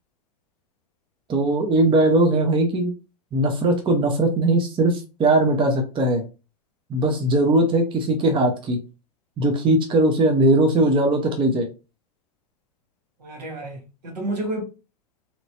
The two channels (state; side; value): normal; both; correlation 0.07